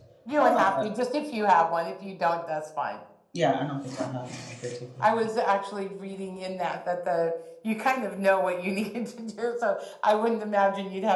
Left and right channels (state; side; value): identical; both; correlation 1.00